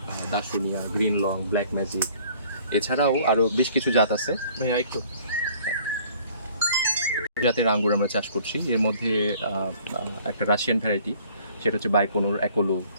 দাসুনিয়া, গ্রিন লং, ব্ল্যাক ম্যাজিক, এছাড়াও আরও বেশ কিছু জাত আছে। ভাইয়া একটু জাতের আঙ্গুর আমরা চাষ করছি। এর মধ্যে একটা রাশিয়ান ভ্যারাইটি, সেটা হচ্ছে বাইকোনোর অ্যাকোলো।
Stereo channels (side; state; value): both; inverted; correlation -0.55